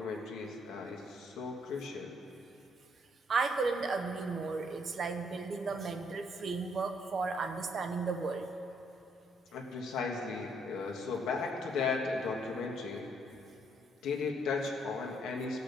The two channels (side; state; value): both; normal; correlation 0.69